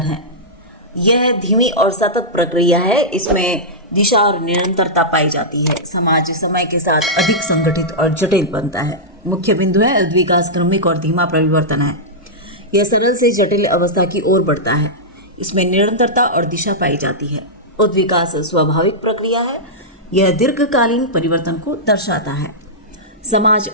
है। यह धीमी और सतत प्रक्रिया है। इसमें दिशा और निरंतरता पाई जाती है। समाज समय के साथ अधिक संगठित और जटिल बनता है। मुख्य बिंदु है, उद्विकास क्रमिक और धीमा परिवर्तन है। यह सरल से जटिल अवस्था की ओर बढ़ता है। इसमें निरंतरता और दिशा पाई जाती है। उद्विकास स्वाभाविक प्रक्रिया है। यह दीर्घकालीन परिवर्तन को दर्शाता है। समाज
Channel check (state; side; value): normal; both; correlation -0.11